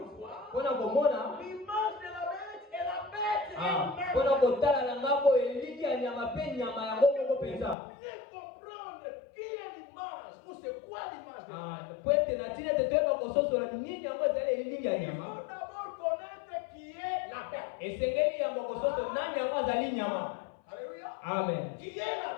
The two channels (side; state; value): right; drops out; at 7.8 s